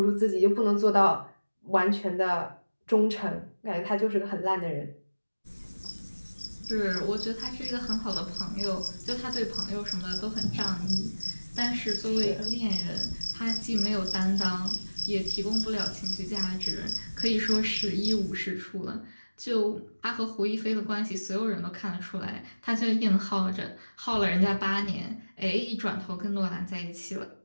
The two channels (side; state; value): both; inverted; correlation -1.00